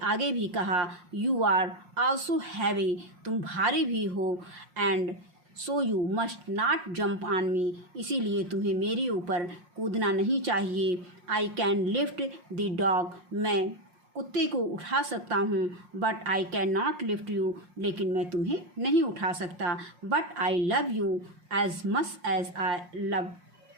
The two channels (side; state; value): left; late; 5.6 ms